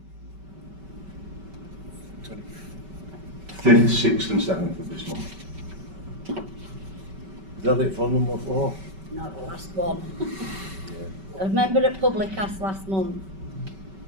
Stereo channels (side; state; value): left; late; 5.2 ms